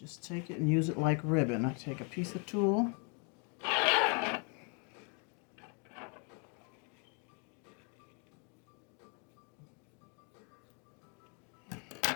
take it and use it like ribbon. I take a piece of tulle, and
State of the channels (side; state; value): right; quieter; 36.9 dB